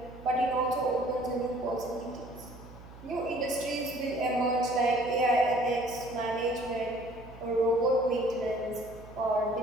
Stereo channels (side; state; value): right; noise; hum, 18 dB below the sound